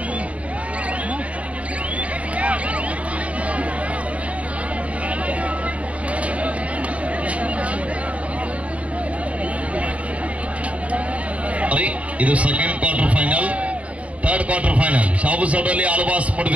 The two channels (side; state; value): left; late; 0.066 ms